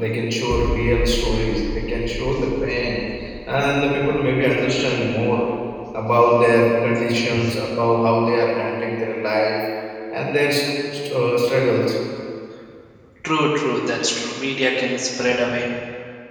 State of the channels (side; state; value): both; identical; correlation 1.00